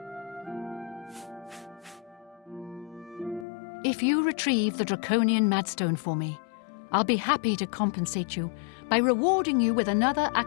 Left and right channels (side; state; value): right; drops out; at 3.5 s